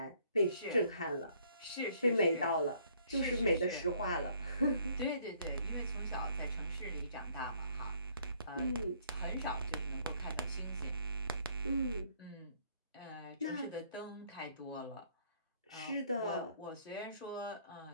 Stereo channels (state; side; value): inverted; both; correlation -0.63